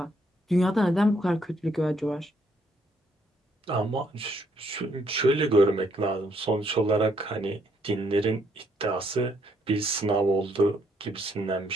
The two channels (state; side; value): normal; both; correlation 0.71